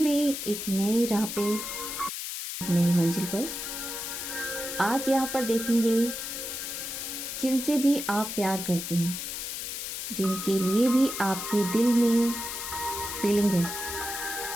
में एक नई राह पे, एक नई मंजिल पर। आज यहाँ पर देखेंगे जिनसे भी आप प्यार करते हैं, जिनके लिए भी आपके दिल में फीलिंग है,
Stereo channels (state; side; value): noise; left; hiss, 5 dB below the sound